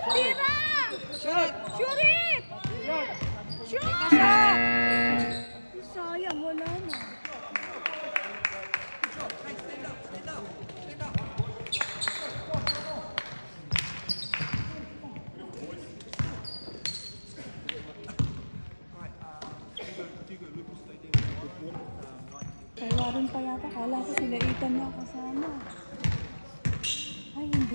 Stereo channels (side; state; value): both; inverted; correlation -1.00